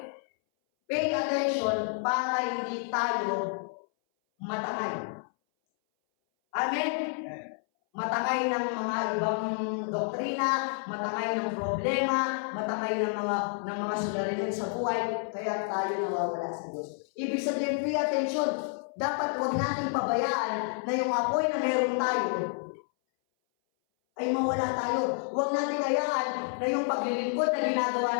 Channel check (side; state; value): right; silent; 58 dB below the other